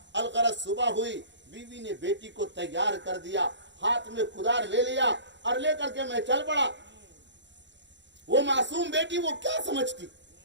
الغرض صبح ہوئی، بیوی نے بیٹی کو تیار کر دیا، ہاتھ میں کدار لے لیا اور لے کر کے میں چل پڑا. وہ معصوم بیٹی وہ کیا سمجھتی،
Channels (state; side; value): late; left; 0.52 ms